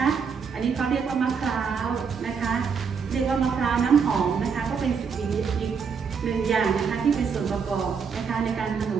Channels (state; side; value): quieter; left; 6.1 dB